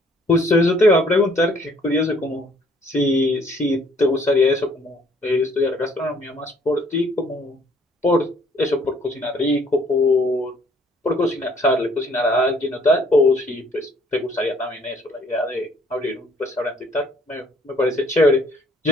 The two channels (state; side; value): normal; both; correlation 0.62